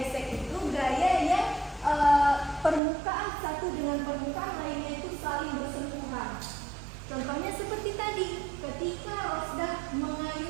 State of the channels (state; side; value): drops out; left; at 2.8 s